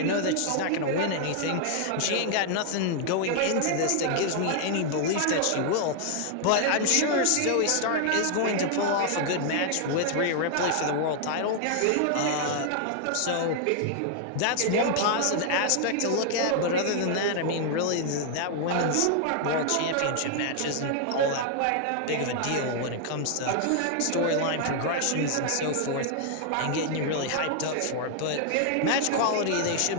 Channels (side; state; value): both; different; correlation 0.00